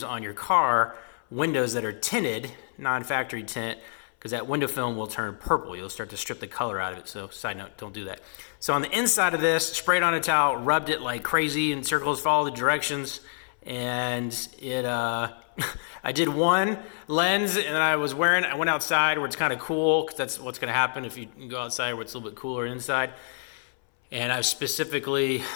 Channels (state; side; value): silent; right; 60 dB below the other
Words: on your car windows that are tinted, non-factory tint, because that window film will turn purple. You'll start to strip the color out of it. So side note, don't do that. So on the inside of this, sprayed on a towel, rubbed it like crazy in circles, followed the directions, and it I did one lens, and I went outside where it's kind of cool, because that's what's going to happen if you go outside where it's a little bit cooler inside. And I specifically